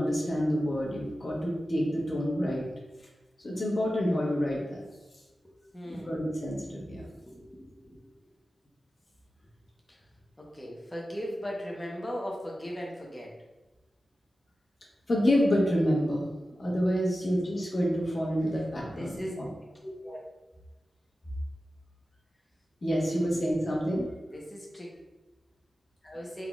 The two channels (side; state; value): both; normal; correlation 0.93